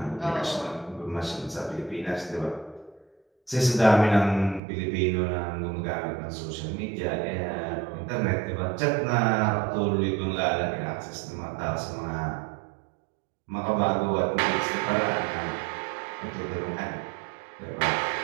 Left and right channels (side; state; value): left; drops out; at 4.6 s